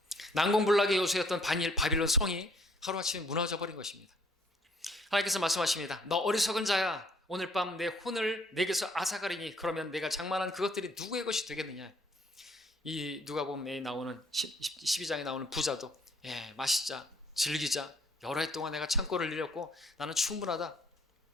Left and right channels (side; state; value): both; normal; correlation 0.62